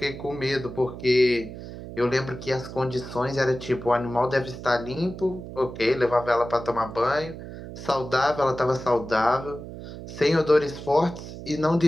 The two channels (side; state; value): right; noise; hum, 11 dB below the sound